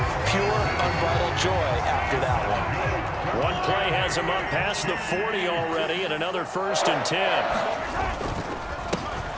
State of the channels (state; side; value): identical; both; correlation 1.00